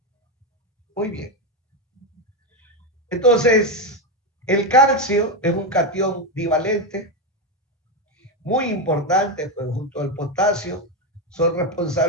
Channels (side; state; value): both; normal; correlation 0.09